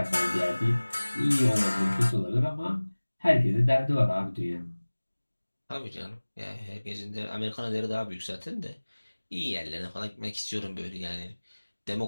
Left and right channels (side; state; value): both; inverted; correlation -1.00